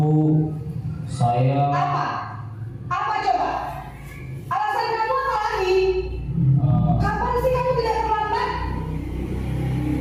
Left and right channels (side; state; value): both; identical; correlation 1.00